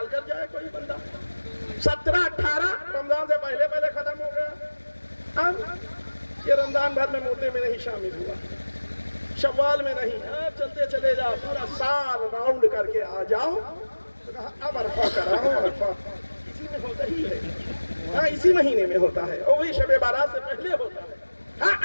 کر جائے کوئی بندہ, 17-18 رمضان سے پہلے پہلے ختم ہو گیا. یہ رمضان بھر میں مردے میں نہیں شامل ہوا, شوال میں نہیں, چلتے چلے جاؤ, پورا سال راؤنڈ کر کے آ جاؤ. اب عرفہ کراؤ. عرفہ اسی میں ہوتا ہی ہے, ہاں اسی مہینے میں ہوتا ہے, اور وہی شب بارات سے پہلے ہوتا ہے. ہاں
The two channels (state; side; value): inverted; both; correlation -1.00